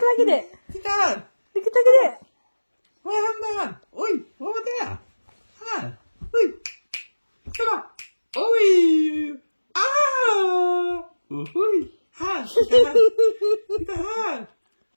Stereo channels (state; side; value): inverted; both; correlation -1.00